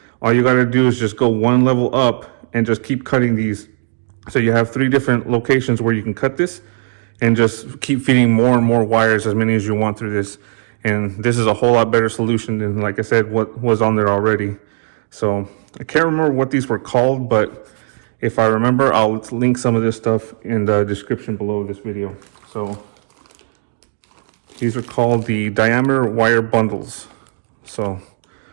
all you got to do is just go one level up and just keep cutting these. So you have 3 different locations where you can cut this and just keep feeding more and more wires, as many as you want through this. And this is a whole lot better solution than, like I said, what was on there already. So I can't remember what these were called, but if I remember, I'll link some of this stuff in the description below this video. So these are called the diameter wire bundles. So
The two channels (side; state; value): left; silent; digital silence